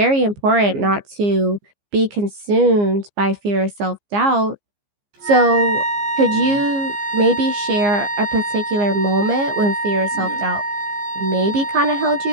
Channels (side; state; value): left; late; 15 ms